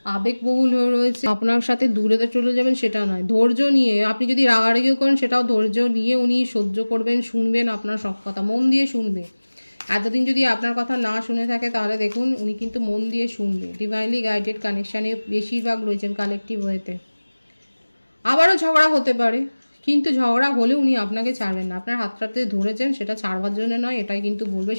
আবেগবহুল হয়ে রয়েছে, আপনার সাথে দূরে চলে যাবেন সেটা নয়, ধৈর্য নিয়ে, আপনি যদি রাগারাগিও করেন সেটাও ধৈর্য নিয়ে উনি সহ্য করবেন, শুনবেন আপনার সব কথা, মন দিয়ে শুনবে। এতদিন যদি আপনার কথা না শুনে থাকে তাহলে দেখুন উনি কিন্তু মন দিয়ে শুনবে। ডিভাইনলি গাইডেড কানেকশানে বেশিরভাগ রয়েছেন কালেকটিভ ওয়েতে। আবারও ঝগড়া হতে পারে, কিন্তু ঝগড়া হলে উনি আপনাকে ছাড়বেন না, আপনার হাতটাতে ধরেছেন সেটা ছাড়বার জন্য নয়, এটাই কিন্তু বলবে,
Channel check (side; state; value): both; inverted; correlation -1.00